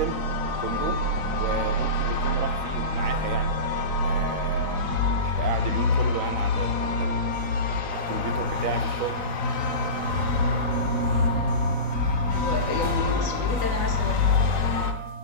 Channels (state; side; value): late; left; 3.9 ms